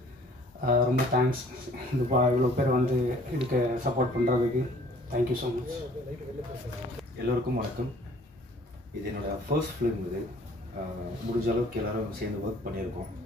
ரொம்ப தேங்க்ஸ் இந்த இவ்வளோ பேர் வந்து இதுக்கு சப்போர்ட் பண்ணுறதுக்கு. Thank you so much. எல்லோருக்கும் வணக்கம். இது என்னோடய ஃபர்ஸ்ட் ஃபிலிம். இது முடிஞ்ச அளவுக்கு எல்லோரும் சேர்ந்து ஒர்க் பண்ணியிருக்கோம்.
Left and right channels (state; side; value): normal; both; correlation 0.55